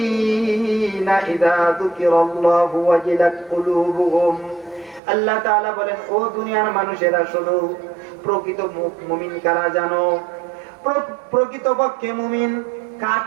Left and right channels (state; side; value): drops out; left; at 5.0 s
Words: ইযা যুকিরাল্লাহু ওয়াজিলাত কুলুবুহুম। আল্লাহ তাআলা বলেন, ও দুনিয়ার মানুষেরা শোনো, প্রকৃত মুমিন কারা জানো? প্রকৃতপক্ষে মুমিন,